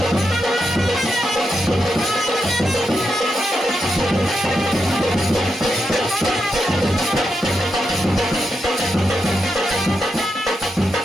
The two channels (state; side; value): normal; both; correlation 0.85